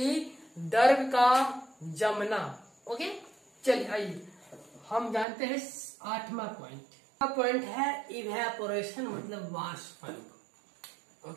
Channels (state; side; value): drops out; left; at 5.2 s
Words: द्रव का जमना। ओके, चलिए आइए हम जानते हैं 8वां पॉइंट। पॉइंट है इवेपोरेशन, मतलब वाष्पन।